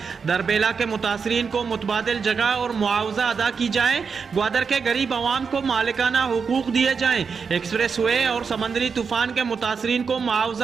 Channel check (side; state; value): left; quieter; 5.7 dB